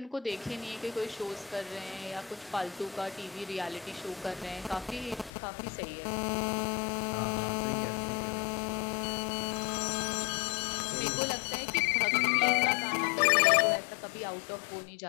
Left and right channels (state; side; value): drops out; right; at 5.3 s